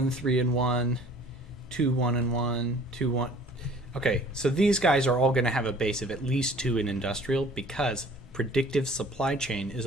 3, and 1, 2, 1, and 1, 2, 1. Okay, so these guys are all going to have a base of at least 2 in industrial, because predictive supply chain is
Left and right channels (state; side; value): normal; both; correlation 0.51